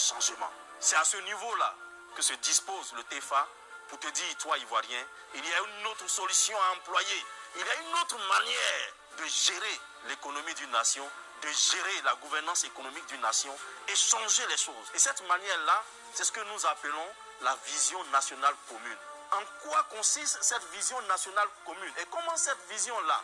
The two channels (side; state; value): both; identical; correlation 1.00